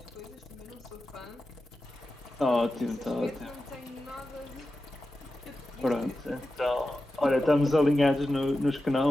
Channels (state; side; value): normal; both; correlation 0.92